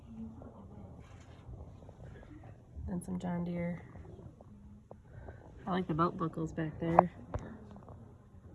And some John Deere. I like the belt buckles back there.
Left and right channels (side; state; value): both; identical; correlation 1.00